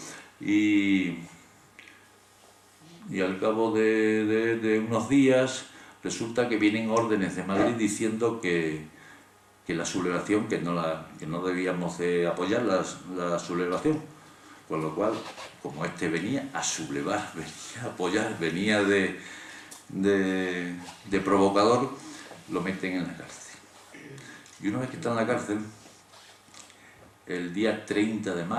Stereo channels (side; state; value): both; identical; correlation 1.00